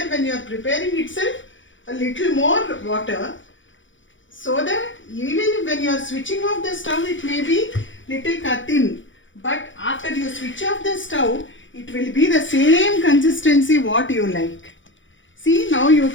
when you are preparing itself a little more water, so that even when you are switching off the stove, it may be little thin, but after you switch off the stove, it will be the same consistency what you like. See, now you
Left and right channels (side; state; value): right; late; 0.56 ms